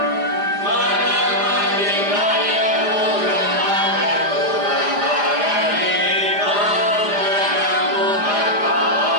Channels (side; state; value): left; late; 4.9 ms